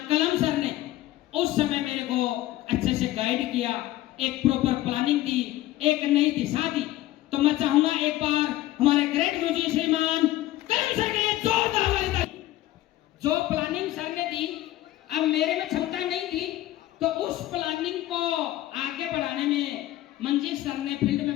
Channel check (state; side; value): quieter; right; 15.3 dB